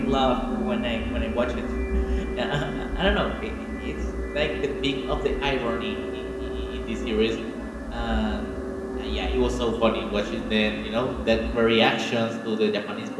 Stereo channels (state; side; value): identical; both; correlation 1.00